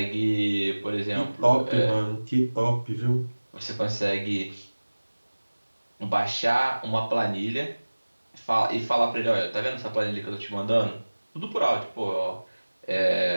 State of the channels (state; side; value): inverted; both; correlation -1.00